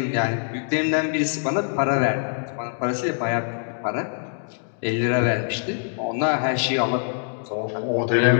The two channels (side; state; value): right; silent; digital silence